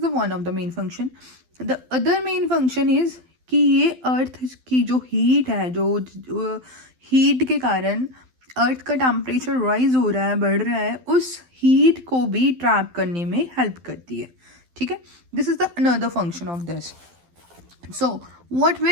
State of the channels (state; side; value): late; left; 12 ms